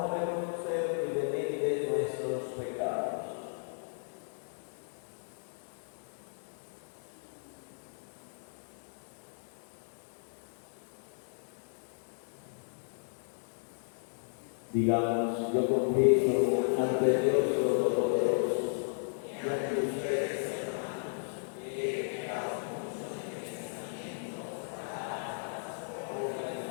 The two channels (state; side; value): silent; right; digital silence